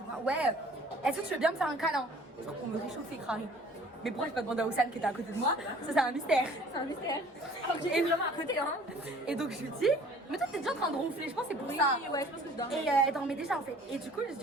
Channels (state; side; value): normal; both; correlation 0.51